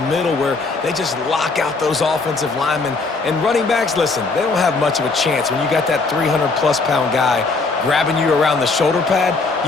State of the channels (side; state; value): right; quieter; 3.9 dB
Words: middle where they just lock out those offensive linemen. And running backs, listen, they don't have much of a chance. When you got that 300-plus pound guy grabbing you around the shoulder pad,